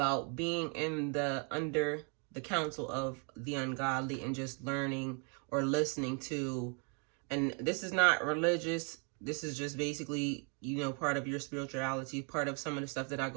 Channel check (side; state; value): left; quieter; 35.3 dB